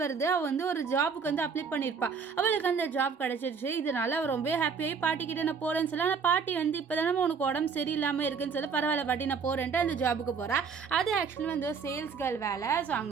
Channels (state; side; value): quieter; left; 5.7 dB